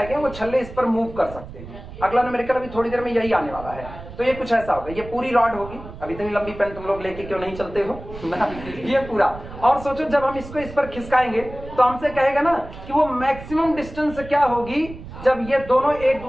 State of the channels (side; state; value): right; noise; rumble, 14 dB below the sound